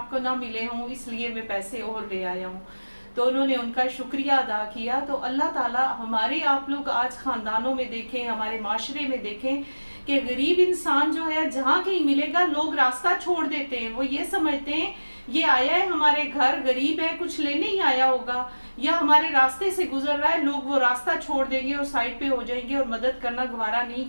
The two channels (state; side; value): inverted; both; correlation -1.00